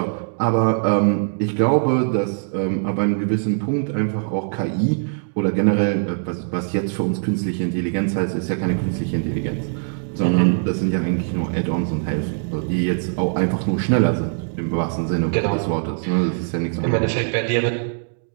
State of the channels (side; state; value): left; silent; digital silence